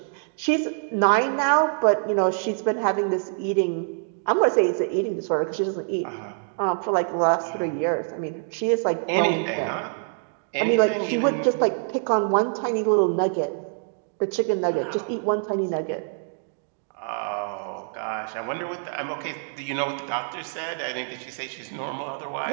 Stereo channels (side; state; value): left; silent; 62 dB below the other